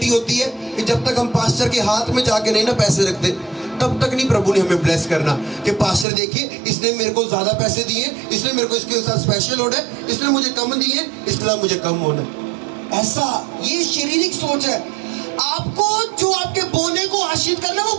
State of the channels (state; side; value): drops out; left; at 6.1 s